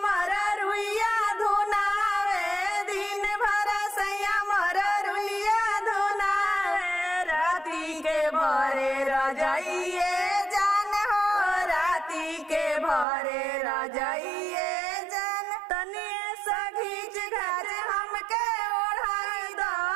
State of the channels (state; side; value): drops out; left; at 13.1 s